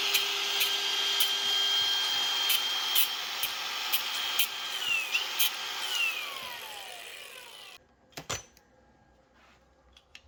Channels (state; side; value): identical; both; correlation 1.00